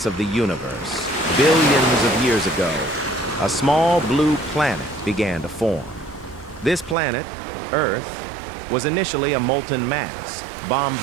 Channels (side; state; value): left; drops out; at 7.0 s